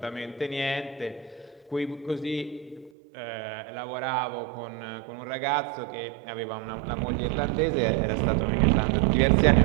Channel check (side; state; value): left; drops out; at 2.9 s